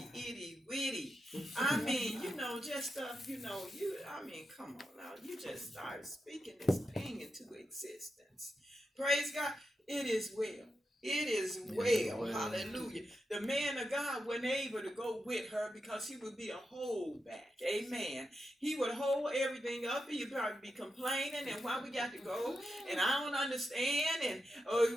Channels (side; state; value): both; normal; correlation 0.88